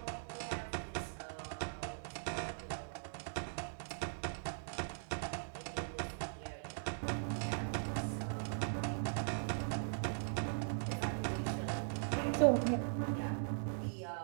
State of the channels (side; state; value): left; silent; digital silence